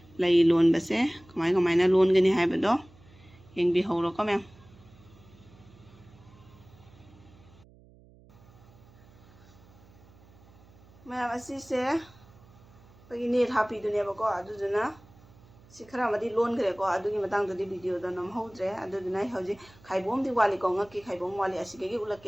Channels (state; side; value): noise; right; hum, 25 dB below the sound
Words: lai lon base kamaina lon gani haibado yengbi hawro ko mem mayam asise bagi net happy duneba ko aduduna सिखरा मदी loan करे को अदुगी Matang ददी video the नम होद्रे अदुना हौजी खाइबोम दि वाली को ngaki खाइबोम वाली असिगे गी